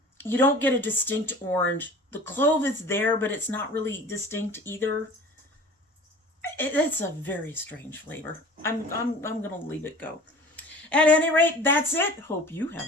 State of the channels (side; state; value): both; normal; correlation 0.42